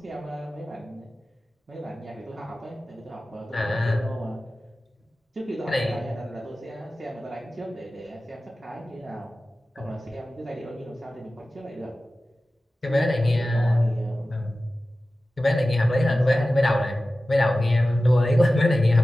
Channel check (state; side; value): normal; both; correlation 0.95